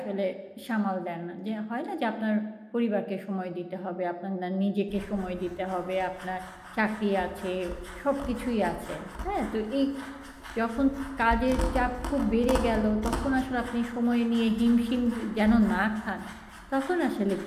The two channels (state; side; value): identical; both; correlation 1.00